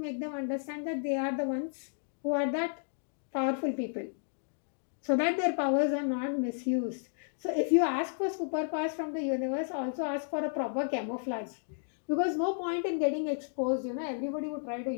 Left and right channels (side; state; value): right; silent; digital silence